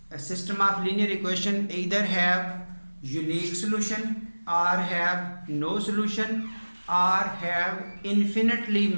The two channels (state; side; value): inverted; both; correlation -1.00